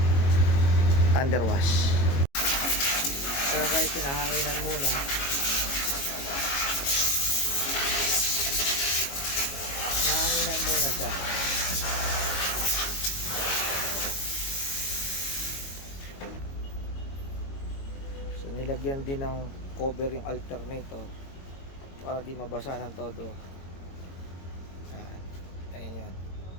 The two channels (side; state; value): right; late; 22 ms